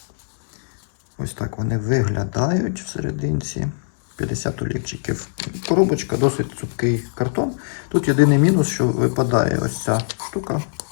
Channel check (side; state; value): right; silent; digital silence